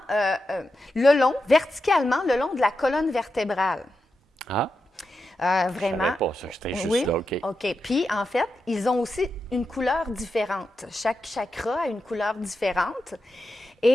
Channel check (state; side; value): normal; both; correlation 0.88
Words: verticalement, le long de la colonne vertébrale. Ah, Vraiment. je savais pas ça, j'étais juste Oui. là, OK. OK. Puis, en fait, ils ont aussi une couleur différente. Chaque chakra a une couleur différente.